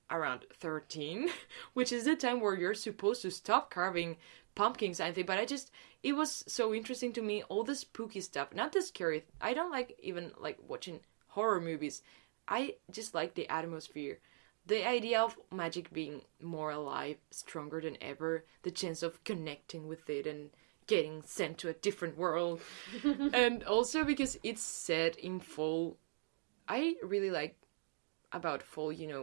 around 13, which is the time where you're supposed to stop carving pumpkins, I think. But it was so interesting to me, all the spooky stuff, not the scary. I don't like even like watching horror movies. I just like the atmosphere, the idea of magic being more alive, stronger than ever, the chance of connecting with it and getting sent to a different world. And also because it's set in fall, I really like about fall,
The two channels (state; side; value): silent; left; digital silence